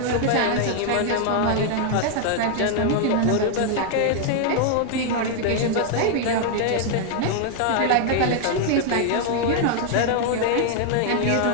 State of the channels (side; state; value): both; different; correlation 0.00